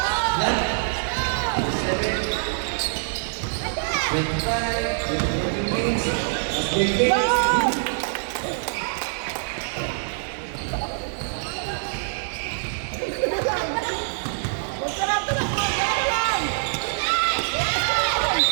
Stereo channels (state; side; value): silent; left; digital silence